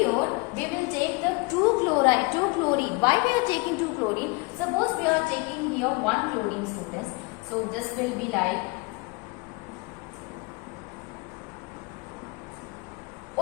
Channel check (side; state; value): right; quieter; 26.8 dB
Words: we will take the 2 chlorine. Why we are taking 2 chlorine? Suppose we are taking here 1 chlorine, students. So this will be like